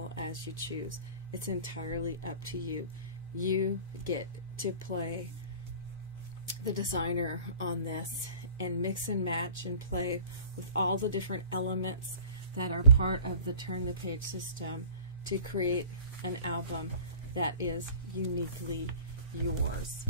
as you choose. It's entirely up to you. You get to play the designer on this and mix and match and play with all the different elements that are part of the Turn the Page system to create an album that is uniquely yours.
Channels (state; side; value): inverted; both; correlation -0.46